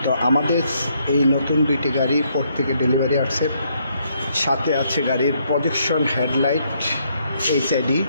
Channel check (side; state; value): both; inverted; correlation -0.72